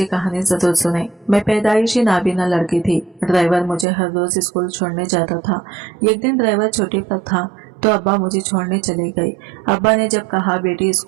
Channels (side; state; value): left; drops out; at 3.9 s